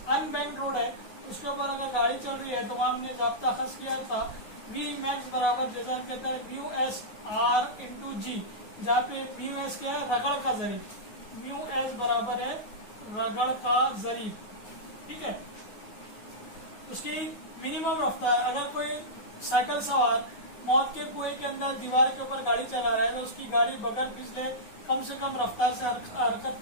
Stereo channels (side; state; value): right; late; 9.3 ms